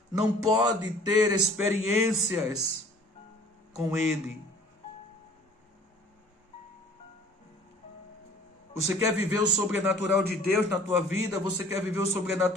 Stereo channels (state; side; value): normal; both; correlation 0.51